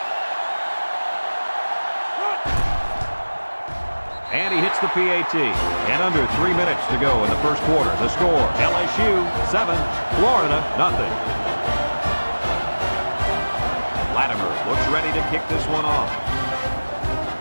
And he hits the PAT. And under 3 minutes to go in the first quarter. The score, LSU 7, Florida nothing. Latimer looks ready to kick this one off.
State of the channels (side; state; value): both; inverted; correlation -1.00